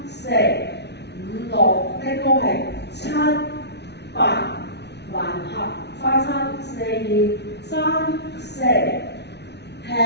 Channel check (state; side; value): late; right; 0.50 ms